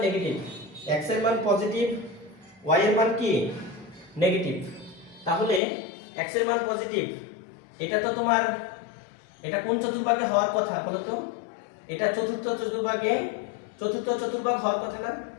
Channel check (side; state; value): right; drops out; at 5.6 s